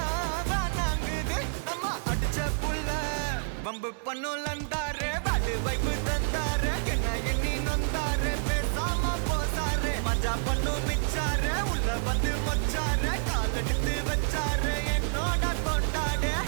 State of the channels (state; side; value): silent; left; 59 dB below the other